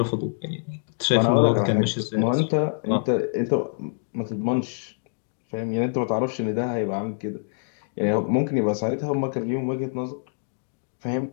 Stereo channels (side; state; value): right; silent; digital silence